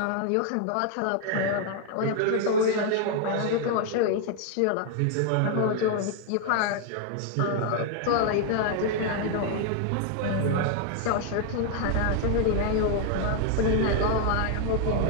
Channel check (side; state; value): both; different; correlation 0.00